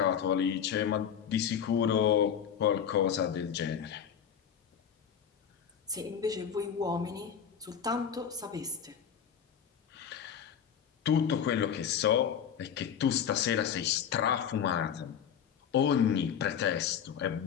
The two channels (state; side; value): quieter; right; 8.2 dB